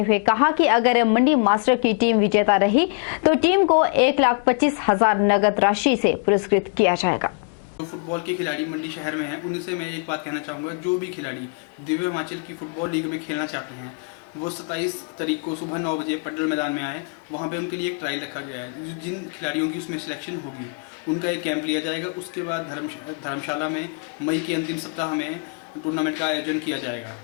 हुए कहा कि अगर मंडी मास्टर की टीम विजेता रही तो टीम को 1,25,000 नगद राशि से पुरस्कृत किया जाएगा। जो फुटबॉल के खिलाड़ी मंडी शहर में हैं उनसे मैं एक बात कहना चाहूँगा, जो भी खिलाड़ी दिव्य हिमाचल की फुटबॉल लीग में खेलना चाहते हैं वो 27 तारीख को सुबह 9 बजे पडल मैदान में आए। वहाँ पे उनके लिए एक ट्रायल रखा गया है। जिन खिलाड़ियों की उसमें सिलेक्शन होगी उनका एक कैंप लिया जाएगा। उसके बाद धर्मशाला में मई के अंतिम सप्ताह में टूर्नामेंट का आयोजन किया जाएगा।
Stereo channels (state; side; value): quieter; right; 37.1 dB